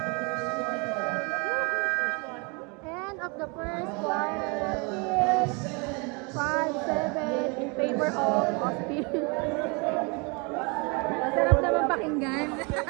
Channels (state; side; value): quieter; left; 31.2 dB